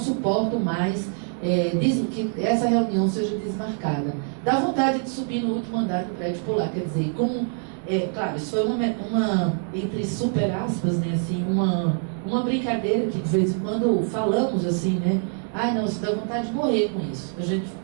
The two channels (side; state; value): left; silent; 55 dB below the other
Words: mais que essa reunião seja desmarcada. Dá vontade de subir no último andar do prédio e pular. Quer dizer, como... claro, isso foi uma entre super aspas, né, assim, uma brincadeira que de vez em quando falamos assim, né? Não, você dá vontade de morrer com isso.